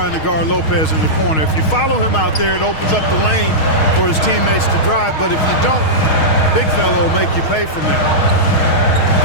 to guard Lopez in the corner. If you follow him out there, it opens up the lane for his teammates to drive. But if you don't, big fella will make you pay from there.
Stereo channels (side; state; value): right; late; 6.4 ms